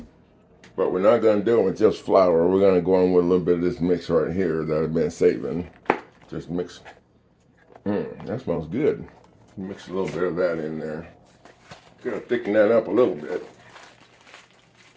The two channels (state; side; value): identical; both; correlation 1.00